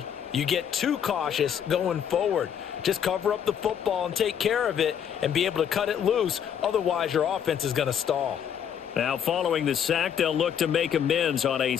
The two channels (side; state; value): right; quieter; 8.6 dB